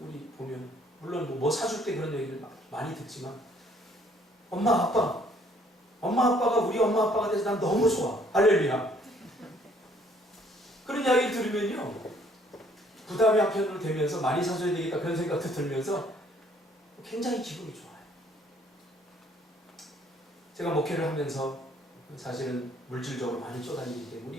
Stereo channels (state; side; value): normal; both; correlation 0.62